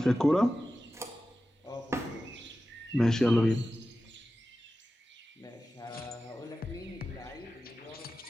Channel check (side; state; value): both; normal; correlation 0.94